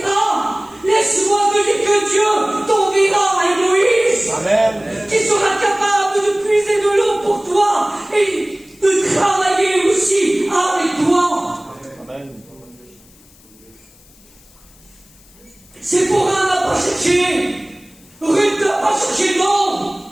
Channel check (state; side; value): noise; left; hiss, 27 dB below the sound